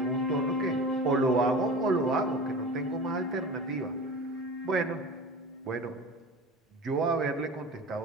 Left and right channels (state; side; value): normal; both; correlation 0.34